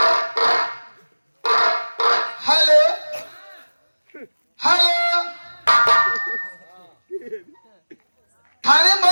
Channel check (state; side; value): inverted; both; correlation -1.00